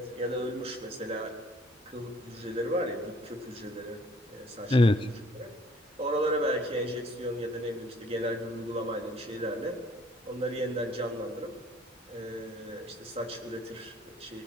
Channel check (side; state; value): both; normal; correlation 0.59